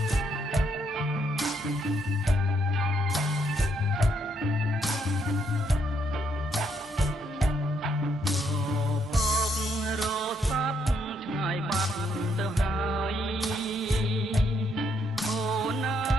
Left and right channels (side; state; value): both; normal; correlation 0.74